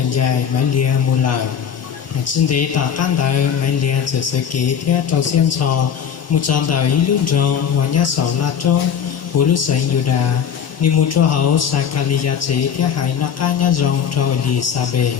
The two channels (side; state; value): right; quieter; 7.8 dB